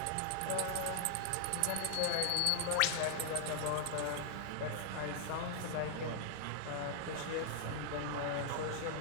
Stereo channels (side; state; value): both; different; correlation 0.00